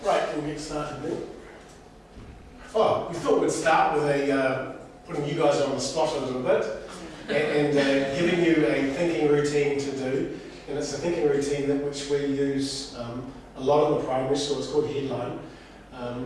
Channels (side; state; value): both; identical; correlation 1.00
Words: Right, we'll get started then. Oh, we thought we'd start with putting you guys on the spot a little bit and giving you a thinking routine to do. and it's a thinking routine that which we use a lot in the primary school. It's called Headline.